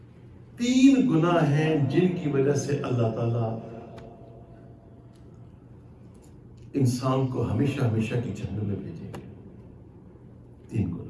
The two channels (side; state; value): both; identical; correlation 1.00